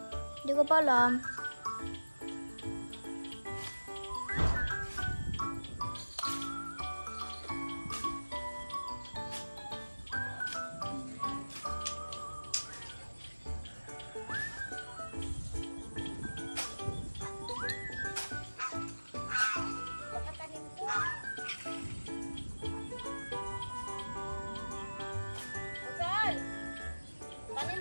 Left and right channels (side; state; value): both; inverted; correlation -1.00